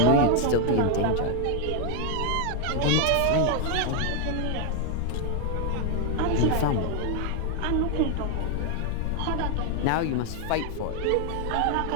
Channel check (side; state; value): both; different; correlation 0.00